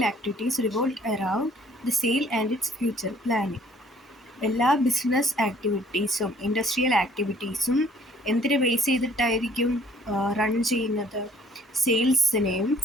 activities revolve around the sale and its future planning. എല്ലാ ബിസിനസ് ആക്ടിവിറ്റീസും ഇൻഡസ്ട്രിയൽ ആക്ടിവിറ്റീസും എന്തിനെ ബേസ് ചെയ്തിട്ടായിരിക്കും റൺ ചെയ്യുന്നത്? സെയിൽസിനെയും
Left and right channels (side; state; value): both; normal; correlation 0.58